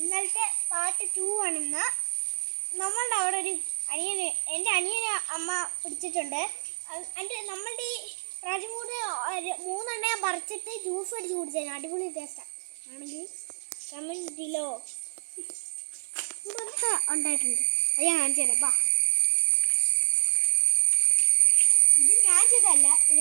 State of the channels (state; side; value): silent; left; 60 dB below the other